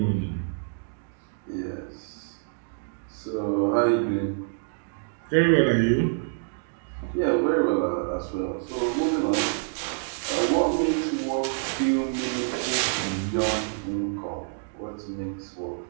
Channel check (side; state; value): left; silent; digital silence